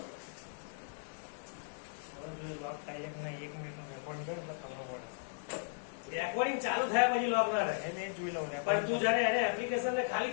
લોક થાય કે નહીં 1 મિનિટનું રેકોર્ડિંગ કરે એટલે ખબર પડે. રેકોર્ડિંગ ચાલુ થયા પછી લોક ના રહે. એને જ જોઈ લઉં ને. પણ તું જ્યારે એને એપ્લિકેશન ને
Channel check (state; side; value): silent; right; digital silence